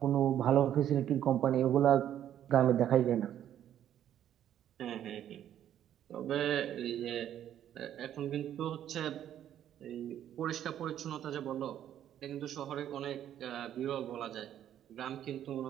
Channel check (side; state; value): left; quieter; 10.8 dB